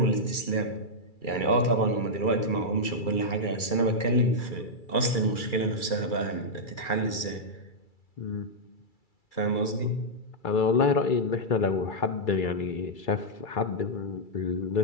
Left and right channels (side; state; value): right; late; 2.3 ms